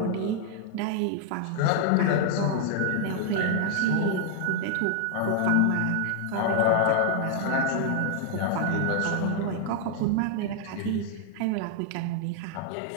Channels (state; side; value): different; both; correlation -0.01